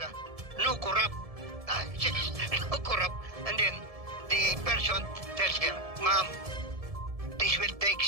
no corrupt. No corrupt. And then the person tells her, Ma'am, this will take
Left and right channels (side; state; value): left; late; 1.7 ms